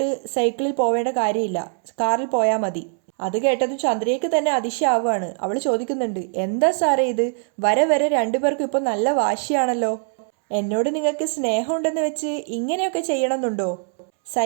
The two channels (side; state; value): left; silent; 64 dB below the other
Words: സൈക്കിളിൽ പോവേണ്ട കാര്യമില്ല, കാറിൽ പോയാൽ മതി. അത് കേട്ടതും ചന്ദ്രയ്ക്ക് തന്നെ അതിശയാവുകയാണ്. അവൾ ചോദിക്കുന്നുണ്ട്, എന്താ സാറേ ഇത്? വരെ രണ്ടുപേർക്കും ഇപ്പോൾ നല്ല വാശിയാണല്ലോ. എന്നോട് നിങ്ങൾക്ക് സ്നേഹമുണ്ടെന്ന് വെച്ച് ഇങ്ങനെയൊക്കെ ചെയ്യണമെന്നുണ്ടോ?